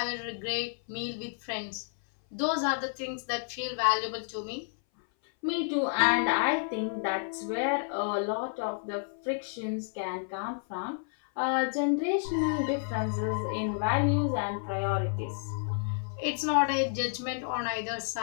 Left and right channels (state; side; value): silent; right; 57 dB below the other